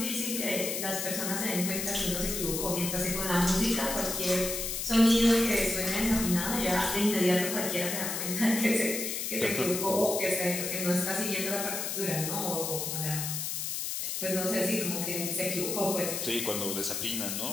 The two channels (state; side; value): noise; left; hiss, 3 dB below the sound